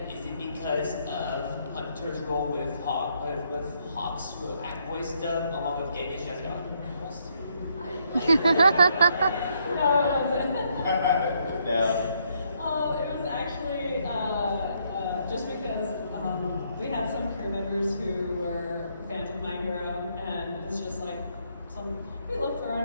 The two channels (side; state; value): both; inverted; correlation -0.73